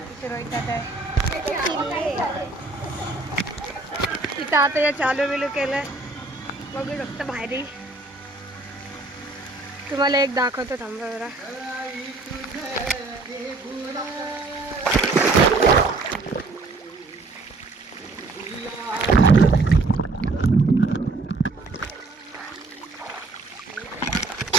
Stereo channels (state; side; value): quieter; left; 3.4 dB